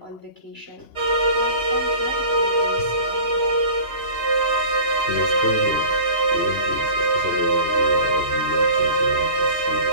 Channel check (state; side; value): late; right; 2.9 ms